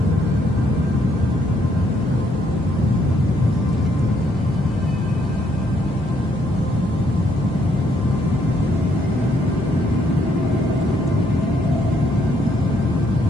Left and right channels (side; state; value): both; normal; correlation 0.71